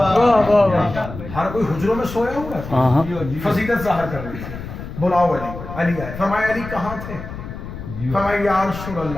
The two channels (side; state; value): left; noise; rumble, 10 dB below the sound